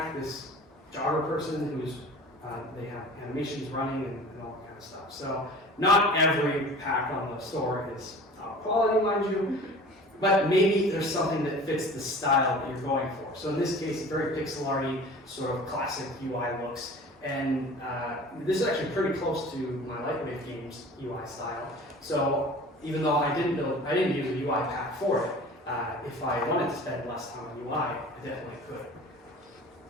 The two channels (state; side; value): normal; both; correlation 0.42